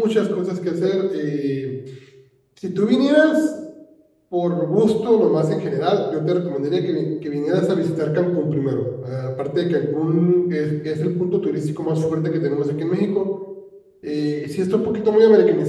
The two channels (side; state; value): both; identical; correlation 1.00